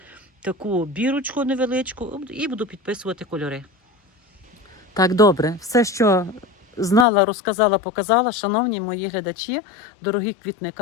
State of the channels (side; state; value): right; drops out; at 7.1 s